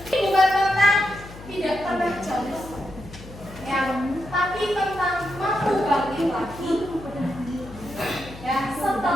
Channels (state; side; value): noise; left; hum, 16 dB below the sound